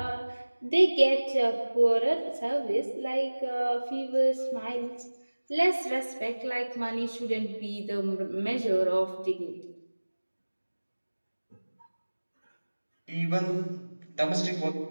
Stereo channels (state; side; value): inverted; both; correlation -1.00